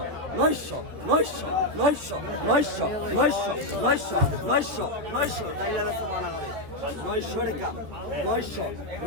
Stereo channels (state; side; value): late; left; 13 ms